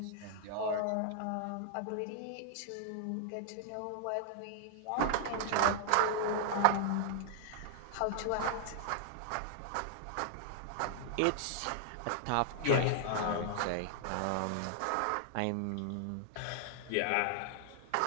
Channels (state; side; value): different; both; correlation -0.01